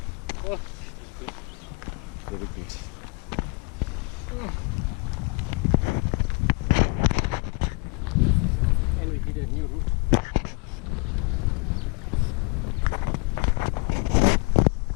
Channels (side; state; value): right; quieter; 29.3 dB